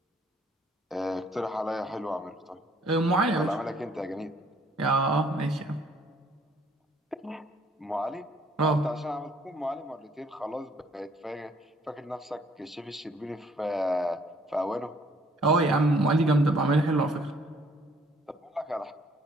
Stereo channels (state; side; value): normal; both; correlation 0.62